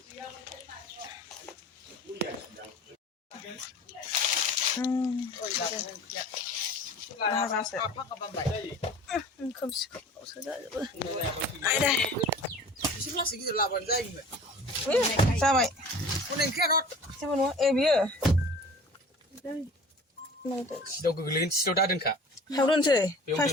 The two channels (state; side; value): normal; both; correlation 0.43